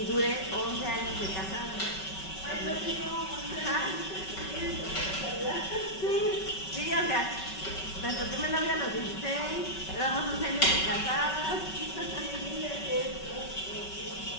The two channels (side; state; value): right; late; 5.3 ms